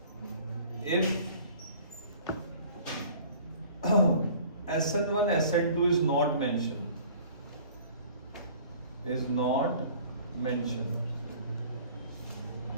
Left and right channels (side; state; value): both; inverted; correlation -0.49